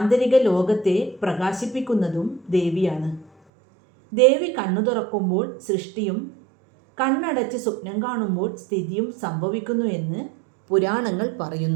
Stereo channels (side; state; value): left; drops out; at 3.3 s